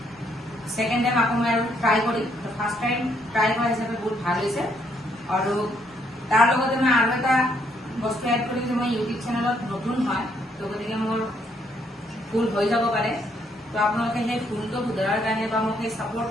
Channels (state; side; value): normal; both; correlation 0.71